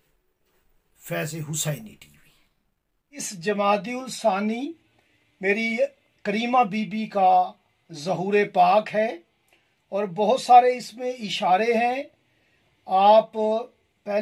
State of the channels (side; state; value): both; identical; correlation 1.00